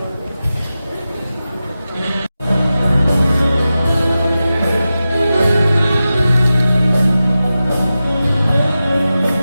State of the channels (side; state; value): both; inverted; correlation -0.93